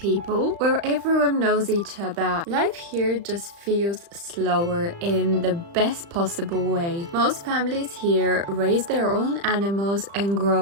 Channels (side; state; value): left; late; 35 ms